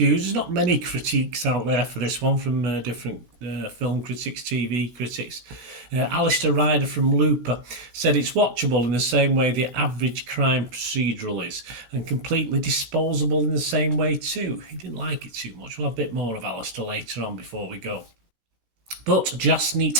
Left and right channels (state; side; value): late; left; 17 ms